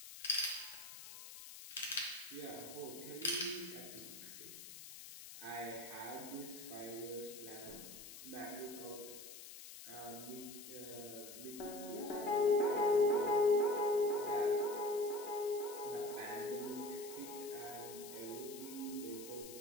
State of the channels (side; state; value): left; noise; hiss, 13 dB below the sound